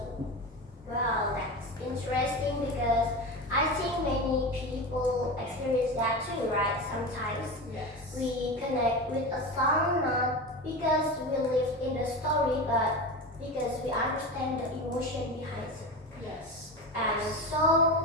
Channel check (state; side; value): normal; both; correlation 0.25